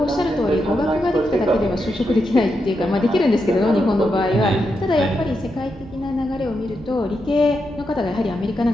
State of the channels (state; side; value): normal; both; correlation 0.84